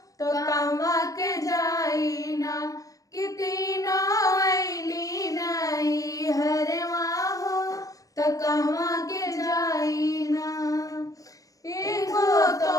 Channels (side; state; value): right; late; 0.17 ms